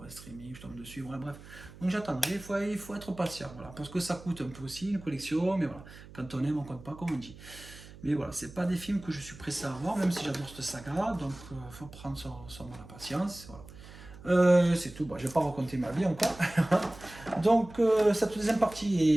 à streaming, je tombe dessus. Voilà, bref. Donc j'attendrai. Il faut être patient, voilà, parce que ça coûte un peu aussi une collection, mais voilà. Quand on aime, on compte pas, comme on dit. Mais voilà, c'est pas des films que je suis pressé à voir, même si j'adore cette saga, donc faut prendre son mal à patience. Voilà. C'est tout, bon, je vais pas raconter ma vie encore. Donc cette deuxième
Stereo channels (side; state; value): right; noise; hum, 18 dB below the sound